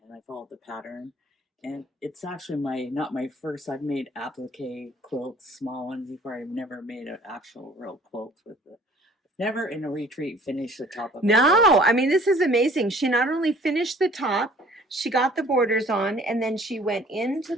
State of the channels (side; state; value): both; normal; correlation 0.53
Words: and I followed the pattern. And it's actually not my first. I've made applique quilts, small ones before. I've never made an actual real quilt with it. Never in a retreat finished the top of a quilt. No, I mean, this is amazing. She not only finished the top, she got the borders on, and then she went into